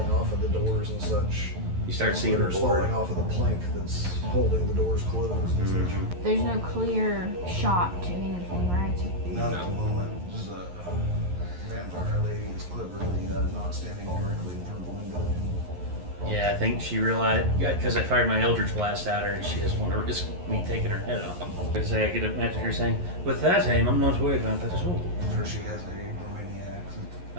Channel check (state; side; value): late; left; 11 ms